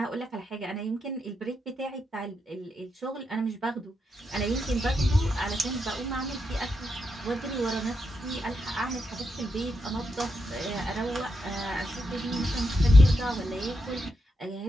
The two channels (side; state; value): both; normal; correlation 0.84